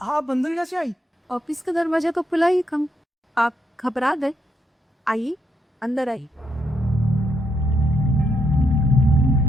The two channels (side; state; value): both; normal; correlation 0.78